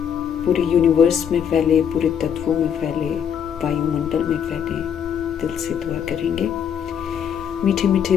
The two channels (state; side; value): quieter; right; 8.2 dB